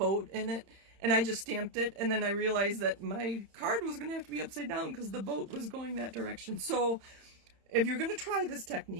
in it, and I just stamped it, and then I realized that my card was going to have to be upside down because the boat was going that direction. So if you're going to try this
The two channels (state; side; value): late; left; 31 ms